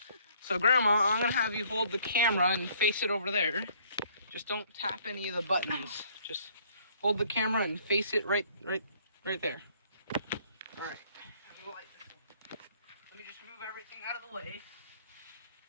So, Grandma, I'm gonna have you hold the camera and face it over there. Just don't tap any of the buttons. Just hold the camera and face it right there. All right. Let me just move everything out of the way.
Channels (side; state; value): both; inverted; correlation -0.61